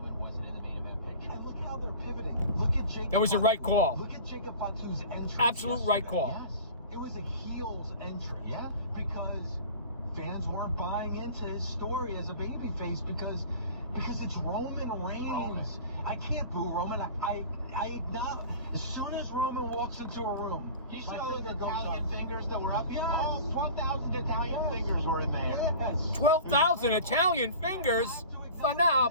look how they're pivoting. Look at Jacob. That was the right call. Look at Jacob Fatu's entrance. Absolute right call. Yes. It was a heel's entrance. Yeah. Because fans weren't buying into his story as a babyface because it's Roman Reigns. I can't boo Roman. I acknowledge. As soon as Roman walks into a room, you see all the Italian fingers that were up? Yes. Oh, 12,000 Italian fingers were in there. Yes. 12,000 Italian fingers?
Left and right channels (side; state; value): both; inverted; correlation -0.39